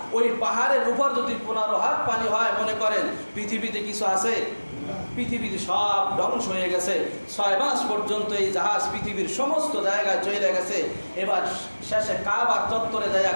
ওই পাহাড়ের উপর যদি 15 হাত পানি হয়, মনে করেন পৃথিবীতে কিছু আছে? পৃথিবীতে সব ধ্বংস হয়ে গেছে। ৬ মাস পর্যন্ত এই জাহাজ পৃথিবীর সমস্ত জায়গায় চলে গেছে। এবার শেষে কাবা চত্বরে যায়,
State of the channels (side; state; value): both; inverted; correlation -1.00